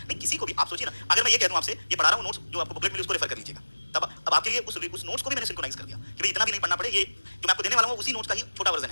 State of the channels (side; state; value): both; inverted; correlation -1.00